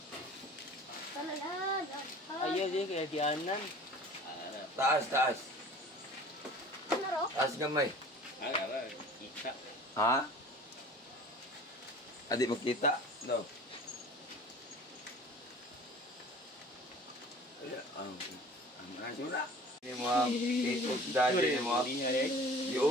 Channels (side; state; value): both; normal; correlation 0.45